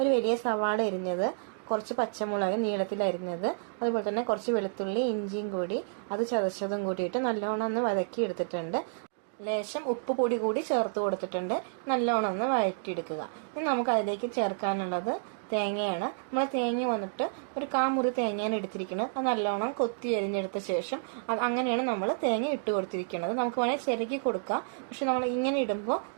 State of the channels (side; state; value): left; silent; digital silence